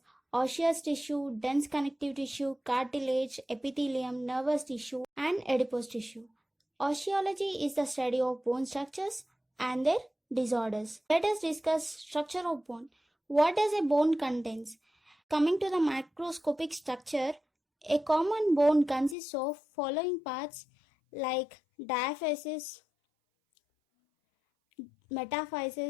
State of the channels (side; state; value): right; drops out; at 19.2 s